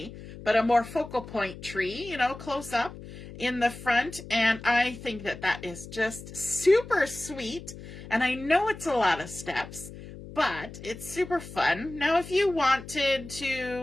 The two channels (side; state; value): left; noise; hum, 14 dB below the sound